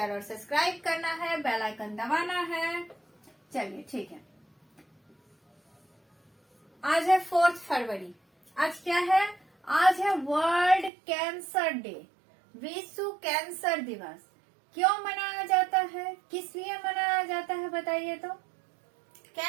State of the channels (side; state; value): left; drops out; at 10.9 s